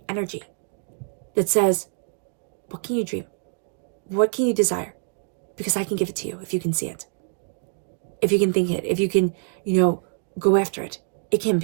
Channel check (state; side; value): silent; left; 62 dB below the other